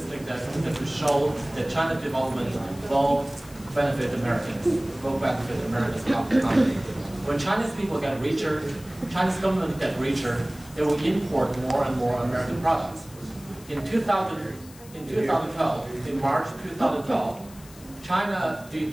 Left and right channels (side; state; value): left; noise; hiss, 21 dB below the sound